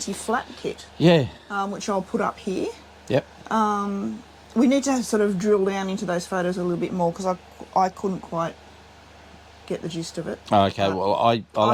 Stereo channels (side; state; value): both; identical; correlation 1.00